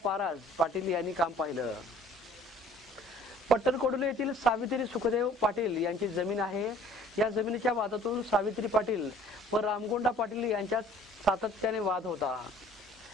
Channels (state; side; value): normal; both; correlation 0.53